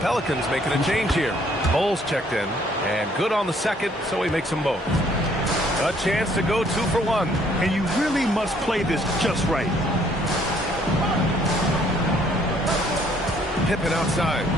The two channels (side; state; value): both; normal; correlation 0.63